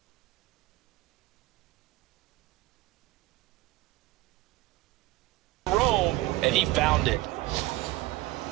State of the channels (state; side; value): quieter; left; 18.3 dB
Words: and he found it.